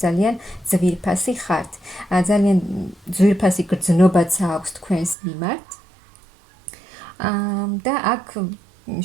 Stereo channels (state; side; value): drops out; left; at 5.2 s